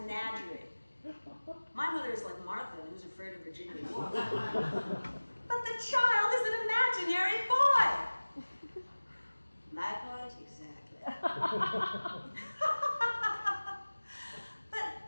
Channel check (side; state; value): both; inverted; correlation -1.00